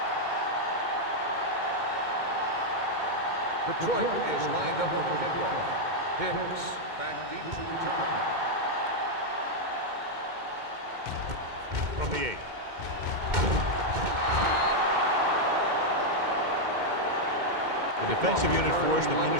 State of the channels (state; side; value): late; left; 2.1 ms